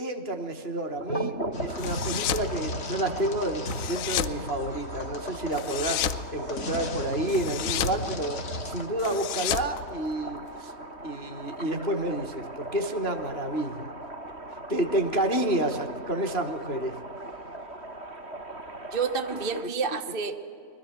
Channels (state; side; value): late; right; 3.9 ms